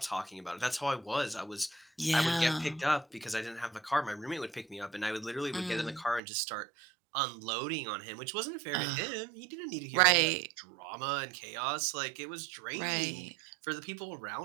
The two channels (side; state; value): left; drops out; at 6.2 s